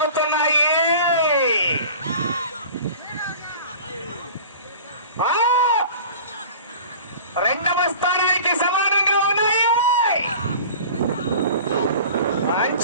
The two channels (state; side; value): inverted; both; correlation -0.41